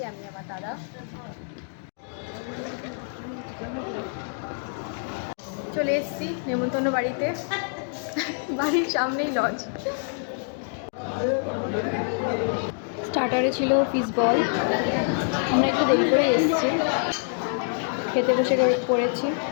আমি আমার দাদা। চলে এসেছি নেমন্তন্ন বাড়িতে, বাড়ির সামনেই লজ। স্টার্টারে ছিল ফিশ বল, আমরা একটু দেরি করে এসেছি। খেতে বসে পড়েছি।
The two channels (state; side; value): silent; right; 61 dB below the other